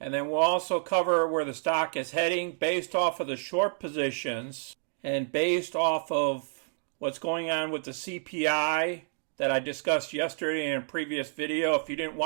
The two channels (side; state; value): left; silent; digital silence